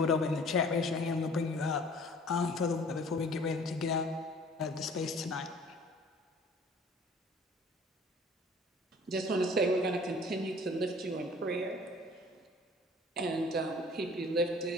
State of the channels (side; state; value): both; normal; correlation 0.51